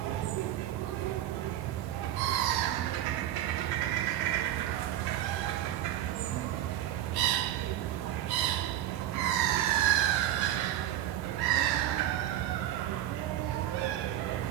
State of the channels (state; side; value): quieter; left; 12.6 dB